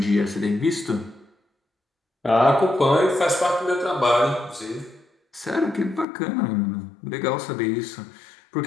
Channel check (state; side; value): drops out; right; at 6.1 s